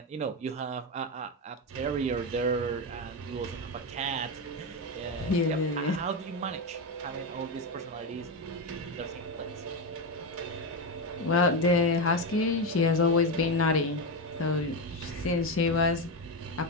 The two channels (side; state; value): both; normal; correlation 0.12